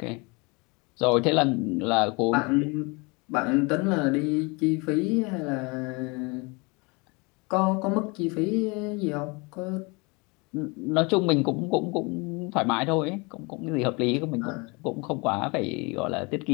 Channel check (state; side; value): quieter; right; 28.4 dB